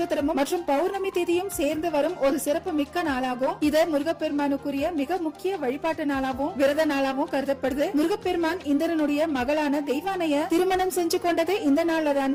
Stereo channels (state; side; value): identical; both; correlation 1.00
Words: மற்றும் பௌர்ணமி தேதியும் சேர்ந்து வரும் ஒரு சிறப்பு மிக்க நாளாகும். இது முருகப்பெருமானுக்குரிய மிக முக்கிய வழிபாட்டு நாளாகவும் விரத நாளாகவும் கருதப்படுது. முருகப்பெருமான் இந்திரனுடைய மகளான தெய்வானைய திருமணம் செஞ்சு கொண்டது இந்த